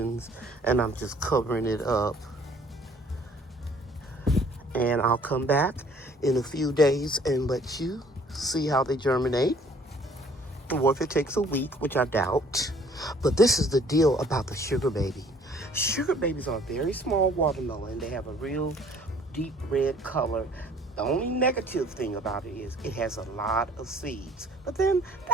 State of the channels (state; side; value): normal; both; correlation 0.57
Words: and I'm just covering it up. And I'll come back in a few days and let you see how they germinate. Or if it takes a week, which I doubt. But this is the deal about the sugar baby. Sugar babies are a very small watermelon. They have a real deep red color. The only negative thing about it is it has a lot of seeds. But then